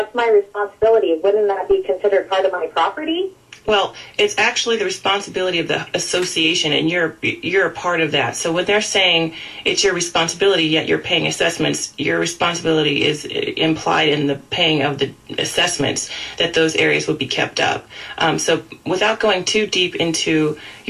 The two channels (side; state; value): both; identical; correlation 1.00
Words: my responsibility, wouldn't that be considered part of my property? Well, it's actually the responsibility of the association, and you're a part of that. So when they're saying it's your responsibility, yet you're paying assessments, your responsibility is implied in the paying of the assessments that those areas would be kept up. So without going too deep into